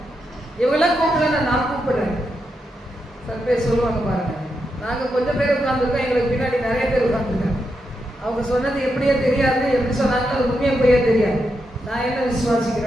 இவங்களாம் கூப்பிடல, நான் கூப்பிடுறேன். சில பேர் சொல்லுவாங்க பாருங்க, நாங்க கொஞ்சம் பேர் உட்கார்ந்துருக்கோம், எங்களுக்கு பின்னாடி நிறைய பேர் உட்கார்ந்துருக்காங்க. அவங்க சொன்னது எப்படியே தெரியாது, எப்படி சொன்னாங்க அது உண்மையை போயே தெரியாது. நான் என்ன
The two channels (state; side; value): normal; both; correlation 0.84